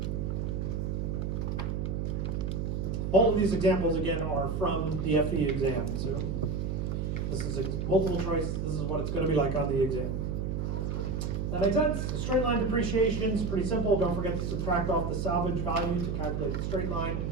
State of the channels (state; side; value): noise; right; hum, 1 dB below the sound